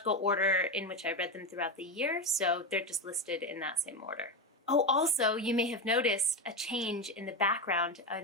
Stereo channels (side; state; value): both; normal; correlation 0.14